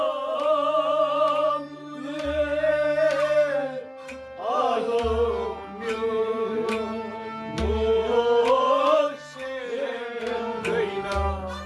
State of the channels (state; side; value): identical; both; correlation 1.00